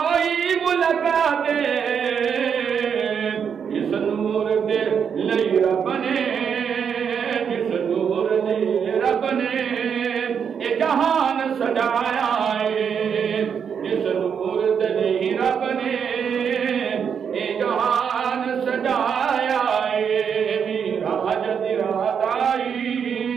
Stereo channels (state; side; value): quieter; left; 7.2 dB